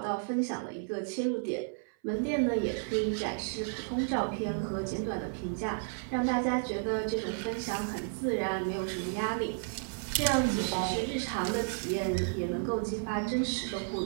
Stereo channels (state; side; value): silent; left; 56 dB below the other